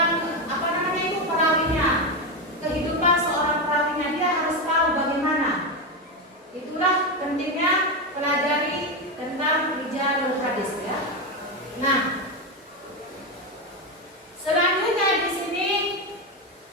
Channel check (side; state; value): both; normal; correlation 0.12